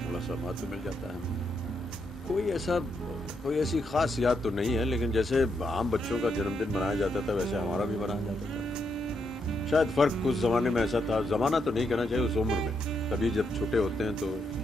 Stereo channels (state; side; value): normal; both; correlation 0.79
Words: थोड़ा सा महत्व मिल जाता है। कोई ऐसी खास याद तो नहीं है, लेकिन जैसे आम बच्चों का जन्मदिन मनाया जाता था वैसे हमारा भी मनाया जाता था। शायद फर्क उस जमाने में ऐसा था, जमाना तो नहीं कहना चाहिए, उस उम्र में सभी जब छोटे होते हैं तो